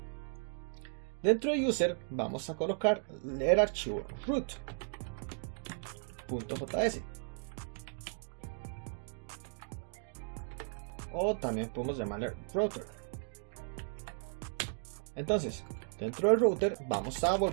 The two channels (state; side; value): silent; left; 54 dB below the other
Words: Dentro de user, vamos a colocar el archivo root.js. O también podemos llamarle router. Entonces, dentro del router vamos a